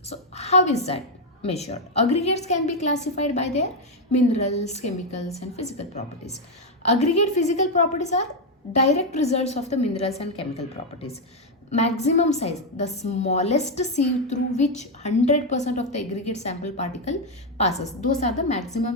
So how is that measured? Aggregates can be classified by their minerals, chemicals and physical properties. Aggregate physical properties are direct results of the minerals and chemical properties. Maximum size, the smallest sieve through which 100% of the aggregate sample particle passes. Those are the maximum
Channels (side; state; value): both; normal; correlation 0.03